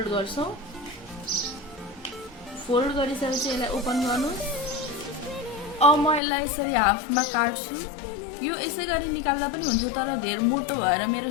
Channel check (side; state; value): right; drops out; at 6.2 s